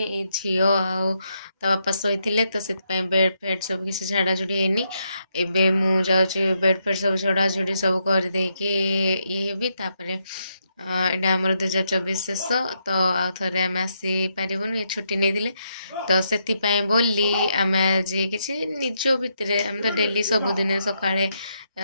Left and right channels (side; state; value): both; inverted; correlation -0.79